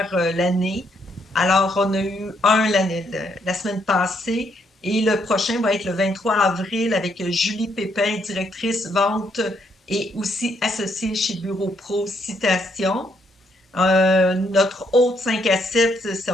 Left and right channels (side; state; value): both; normal; correlation 0.73